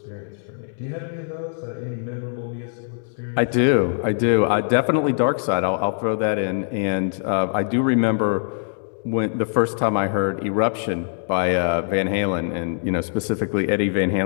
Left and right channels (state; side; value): silent; right; digital silence